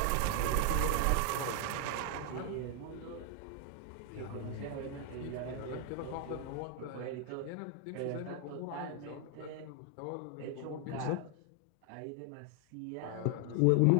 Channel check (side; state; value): both; different; correlation 0.00